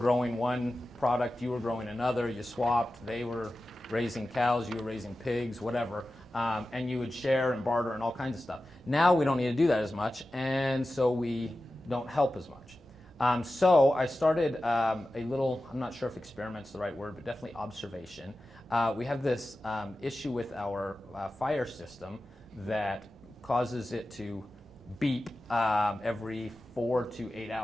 one product, you were growing another, you swapped, they were raising cows, you were raising pigs, whatever, and you would share and barter and all kinds of stuff. Now we don't need to do that as much, and so we don't help as much. So I started a little, I'm not sure if experiment's the right word, but definitely observation. We have this issue with our fire system that causes it to beep every 4 to 8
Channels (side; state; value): right; noise; rumble, 26 dB below the sound